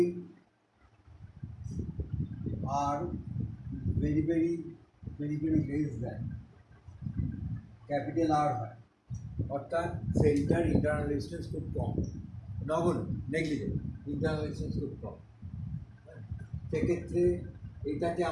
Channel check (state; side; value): identical; both; correlation 1.00